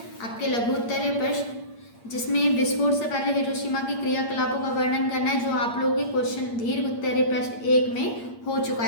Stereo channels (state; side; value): late; right; 8.6 ms